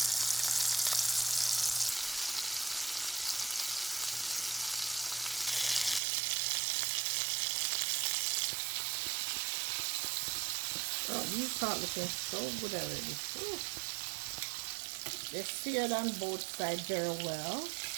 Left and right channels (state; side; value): drops out; left; at 6.0 s